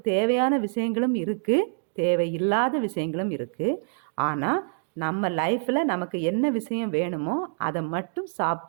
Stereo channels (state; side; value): silent; left; digital silence